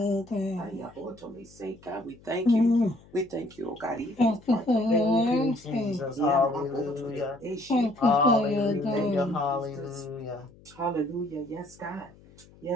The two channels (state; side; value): noise; left; hum, 25 dB below the sound